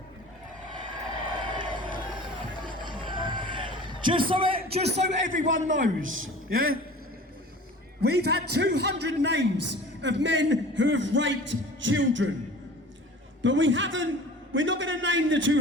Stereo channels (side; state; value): both; normal; correlation 0.42